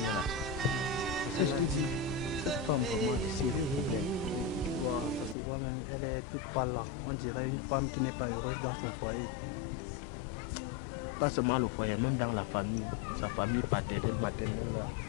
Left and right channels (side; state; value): right; drops out; at 5.4 s